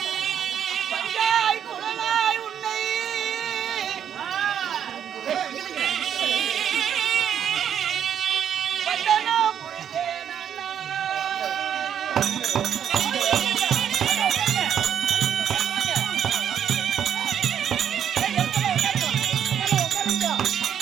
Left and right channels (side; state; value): left; quieter; 8.9 dB